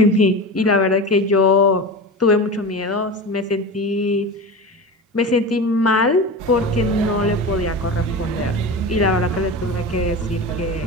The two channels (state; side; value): normal; both; correlation 0.27